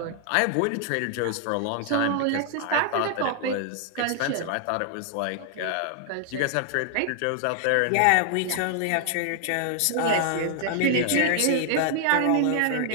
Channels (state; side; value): different; both; correlation 0.00